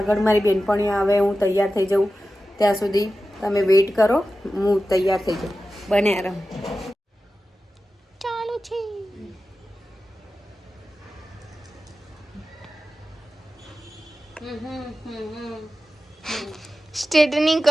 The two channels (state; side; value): normal; both; correlation 0.93